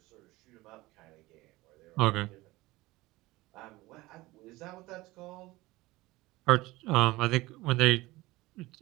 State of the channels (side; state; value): left; quieter; 19.9 dB